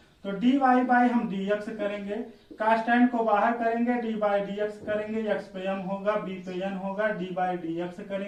तो dy बाई हम dx करेंगे, कांस्टेंट को बाहर करेंगे, dy बाई dx करेंगे, x पे m होगा, b पे n होगा, dy बाई dx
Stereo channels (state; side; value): identical; both; correlation 1.00